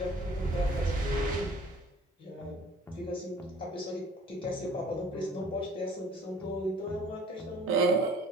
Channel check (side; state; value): both; normal; correlation 0.51